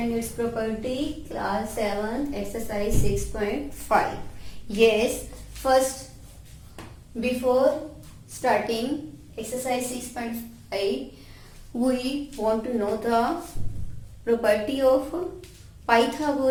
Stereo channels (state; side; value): identical; both; correlation 1.00